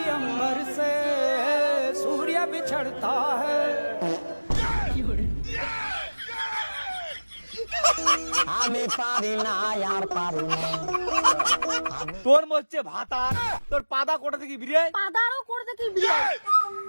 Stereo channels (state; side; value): inverted; both; correlation -1.00